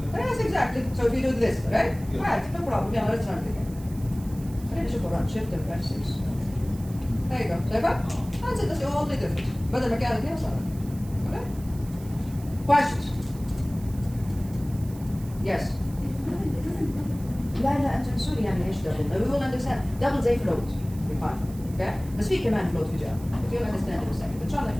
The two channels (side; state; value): right; noise; hiss, 21 dB below the sound